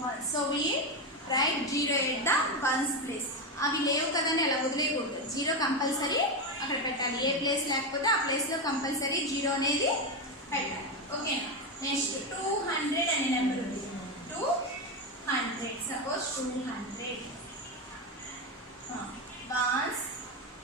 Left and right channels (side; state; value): both; normal; correlation 0.12